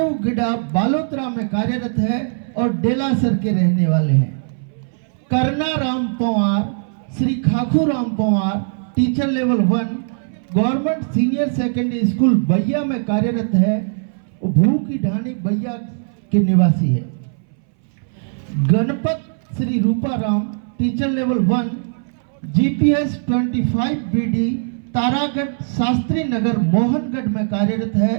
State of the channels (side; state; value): left; silent; 63 dB below the other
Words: गिडा बालोतरा में कार्यरत है और डेलासर के रहने वाले हैं। Karna Ram Pawar Shri Khakhu Ram Pawar teacher level 1 government senior secondary school Baiya में कार्यरत है, भू की ढानी बैया के निवासी है। Ganpat Shri Ruparam teacher level 1 GPS 25 BD Taragarh Shastri Nagar Mohangarh में कार्यरत है,